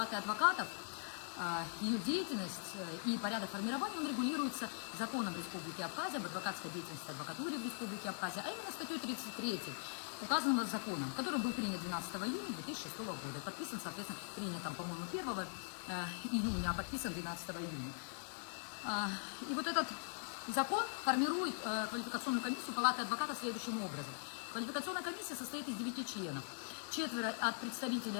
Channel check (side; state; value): right; silent; digital silence